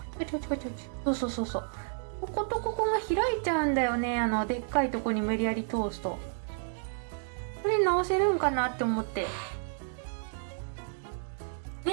う。こことここが開いちゃうんだよね。でっかいとこに無理やり通すと。それ直せるんかなって思って。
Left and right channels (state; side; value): silent; left; digital silence